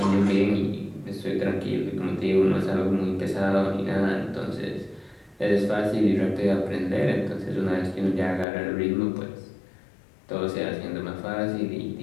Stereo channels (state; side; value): drops out; right; at 8.5 s